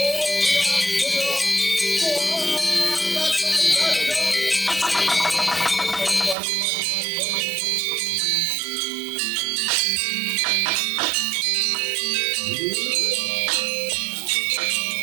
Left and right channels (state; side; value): drops out; left; at 6.4 s